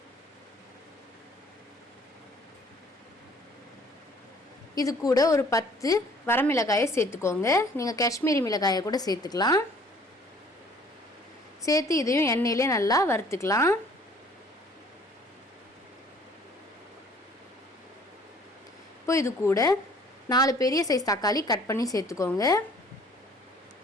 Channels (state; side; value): normal; both; correlation 0.56